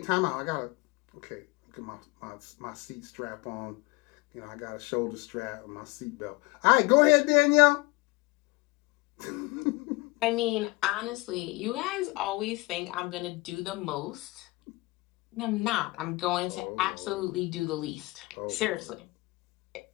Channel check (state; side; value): quieter; right; 23.4 dB